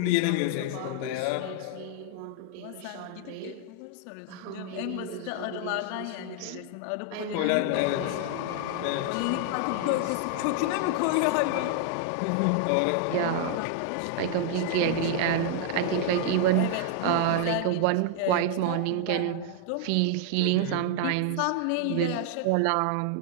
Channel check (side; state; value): both; different; correlation -0.01